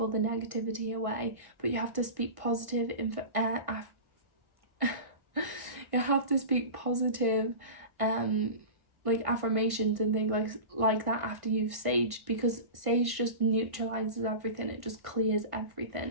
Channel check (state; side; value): late; left; 1.6 ms